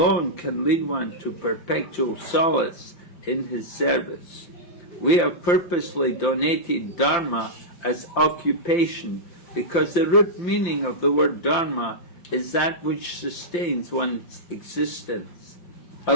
can lead one to perpetual solace in his service. We are purposely donating Dharma as occupation because the root meaning of the word Dharma is that which sustains one's existence. A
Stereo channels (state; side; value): late; right; 5.8 ms